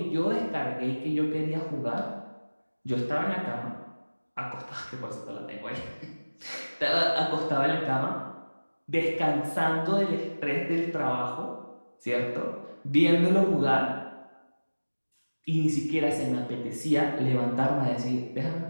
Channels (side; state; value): both; inverted; correlation -1.00